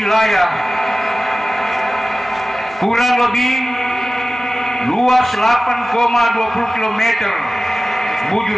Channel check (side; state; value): both; normal; correlation 0.96